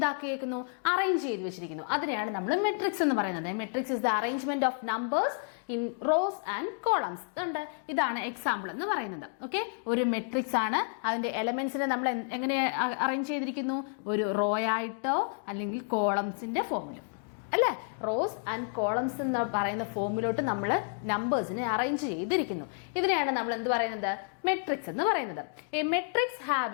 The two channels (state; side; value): silent; right; 57 dB below the other